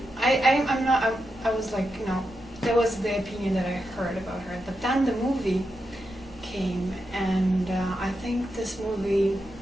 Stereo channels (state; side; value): normal; both; correlation 0.86